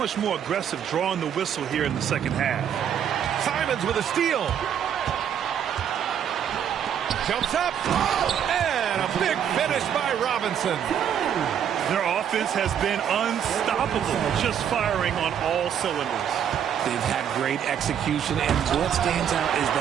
more aggressive drawing the whistle here in the second half. Simons with a steal. Jumps up. And a big finish by Robinson. Their offense has been unstoppable, just firing on all cylinders. They've had great execution, and what stands out is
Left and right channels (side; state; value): left; quieter; 8.9 dB